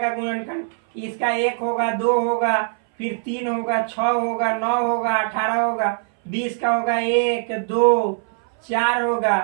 गुणनखंड। इसका 1 होगा, 2 होगा, फिर 3 होगा, 6 होगा, 9 होगा, 18 होगा, 20 का होगा 1, 2, 4 होगा,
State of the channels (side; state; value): left; silent; 60 dB below the other